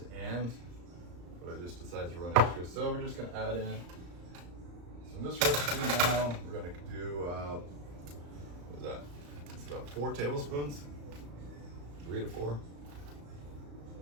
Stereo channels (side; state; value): left; late; 34 ms